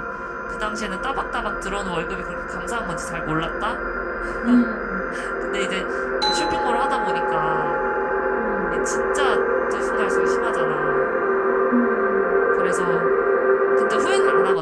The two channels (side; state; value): both; identical; correlation 1.00